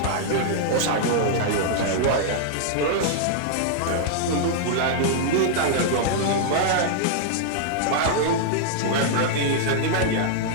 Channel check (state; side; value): different; both; correlation -0.01